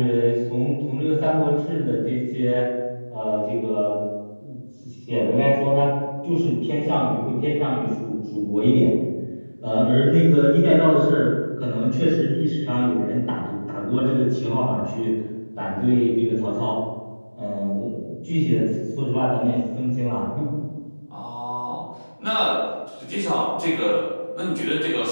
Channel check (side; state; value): both; inverted; correlation -1.00